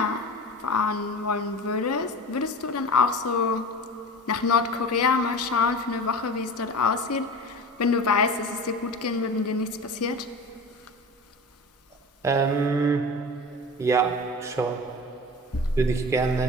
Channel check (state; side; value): normal; both; correlation 0.33